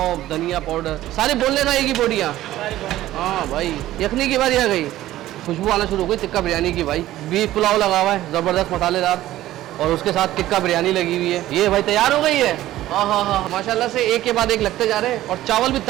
धनिया पाउडर सारे बोलने ना की बोटियाँ। हाँ भाई यखनी की बारी आ गई, खुशबू आना शुरू हो गई टिक्का बिरयानी की भाई। बीफ पुलाव लगा हुआ है ज़बरदस्त मसालेदार और उसके साथ टिक्का बिरयानी लगी हुई है। ये भाई तैयार हो गई है। हाँ हाँ हाँ माशाल्लाह से एक के बाद एक लगते जा रहे हैं और चावल भी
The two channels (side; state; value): left; quieter; 14.6 dB